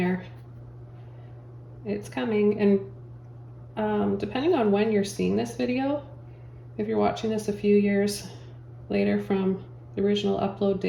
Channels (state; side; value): identical; both; correlation 1.00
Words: It's coming, and depending on when you're seeing this video, if you're watching this a few years later from the original upload